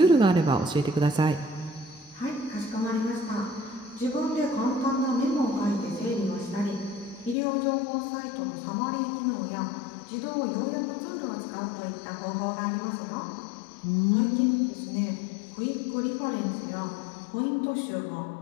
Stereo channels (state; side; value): drops out; right; at 7.4 s